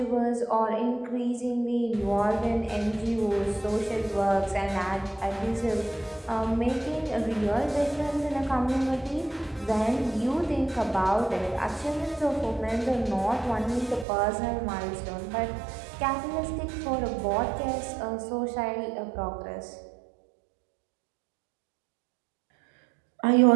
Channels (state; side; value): drops out; left; at 14.1 s